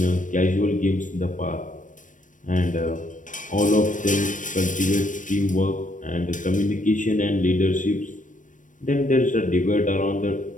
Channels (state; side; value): late; right; 0.37 ms